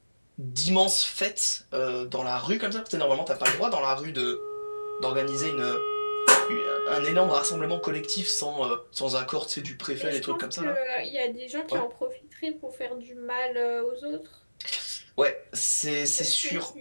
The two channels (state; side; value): inverted; both; correlation -1.00